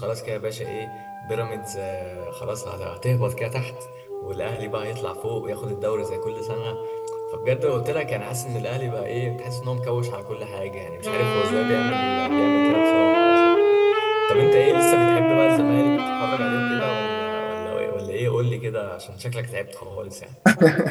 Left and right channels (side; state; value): both; identical; correlation 1.00